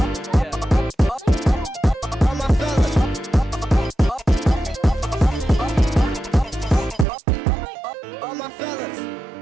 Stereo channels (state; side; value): drops out; left; at 7.1 s